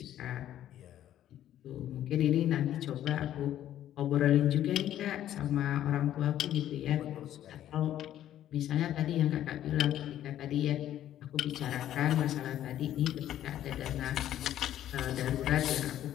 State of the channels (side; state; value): right; quieter; 11.9 dB